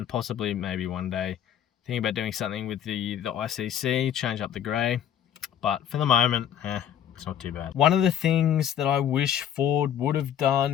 possibly maybe one day thinking about doing something with the ICC, change up the grey, but for the moment, it's not too bad. One of the things that I wish Ford would have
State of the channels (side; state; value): right; quieter; 9.8 dB